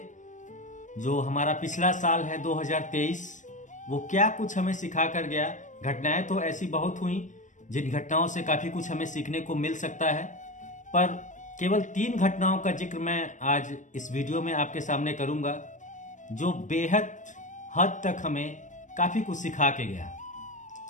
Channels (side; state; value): right; late; 0.36 ms